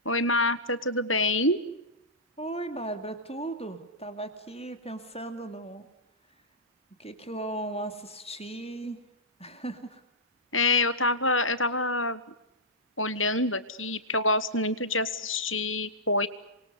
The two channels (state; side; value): normal; both; correlation -0.15